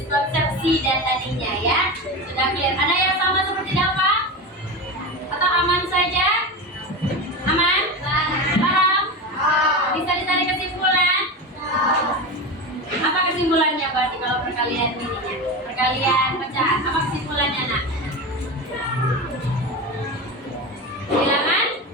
dan tadinya ya. Sudah clear. Ada yang sama seperti dapat? Atau aman saja? Aman? Paham? Bisa ditarik kesimpulan? Apa kesimpulannya berarti kalau perkalian ininya? Perkalian pecahan. Apa kesimpulannya nak? Bilangan?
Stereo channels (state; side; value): normal; both; correlation 0.23